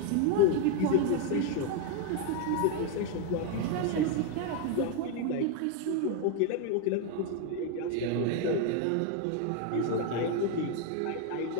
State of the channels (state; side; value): different; both; correlation 0.01